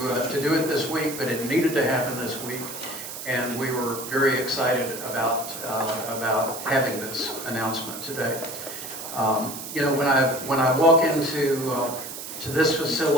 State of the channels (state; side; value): noise; right; hiss, 9 dB below the sound